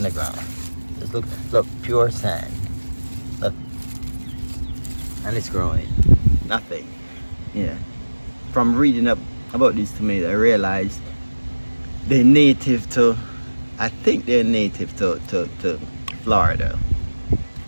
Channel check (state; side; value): inverted; both; correlation -1.00